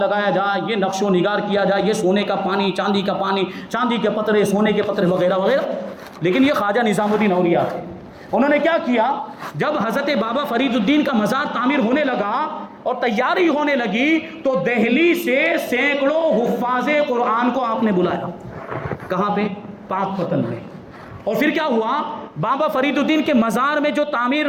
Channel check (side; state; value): both; identical; correlation 1.00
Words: جائے, یہ نقش و نگار کیا جائے, یہ سونے کا پانی, چاندی کا پانی, چاندی کے پترے, سونے کے پترے وغیرہ وغیرہ. لیکن یہ خواجہ نظام الدین اولیاء تھے. انہوں نے کیا کیا, جب حضرت بابا فرید الدین کا مزار تعمیر ہونے لگا اور تیاری ہونے لگی تو دہلی سے سینکڑوں حفاظ قرآن کو آپ نے بلایا. کہاں پہ؟ پاک پتن میں. اور پھر کیا ہوا, بابا فرید الدین کے مزار میں جو تعمیر